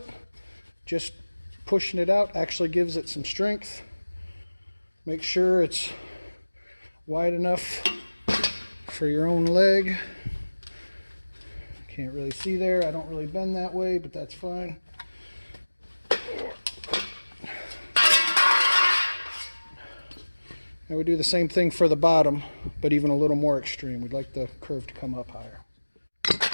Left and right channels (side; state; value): both; inverted; correlation -1.00